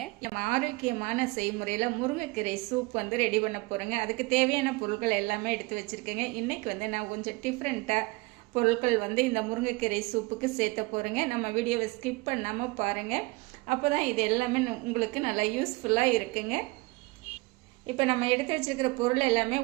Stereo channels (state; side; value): quieter; left; 23.8 dB